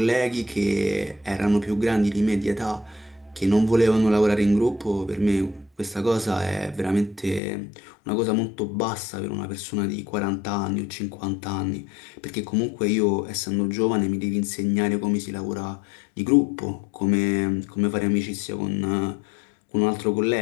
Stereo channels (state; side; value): drops out; right; at 7.4 s